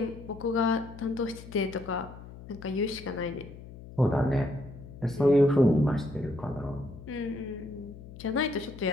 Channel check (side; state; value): left; noise; hum, 15 dB below the sound